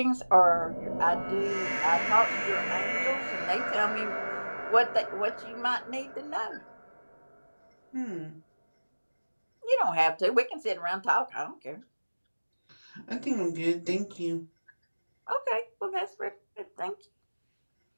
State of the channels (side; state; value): both; inverted; correlation -1.00